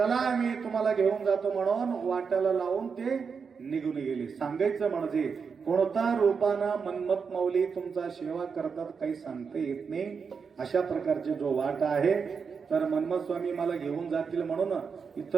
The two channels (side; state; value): left; quieter; 5.8 dB